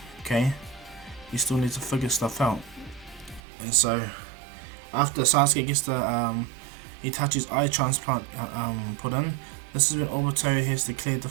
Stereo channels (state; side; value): drops out; left; at 3.4 s